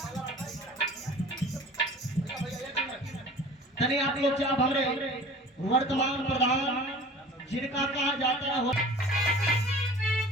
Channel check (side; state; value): both; normal; correlation 0.43